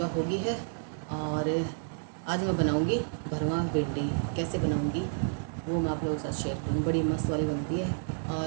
होगी है। और आज मैं बनाऊंगी भरवा भिंडी। कैसे बनाऊंगी वो मैं आप लोगों के साथ शेयर करूँगी। बड़ी मस्त वाली बनती है।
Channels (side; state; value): left; silent; digital silence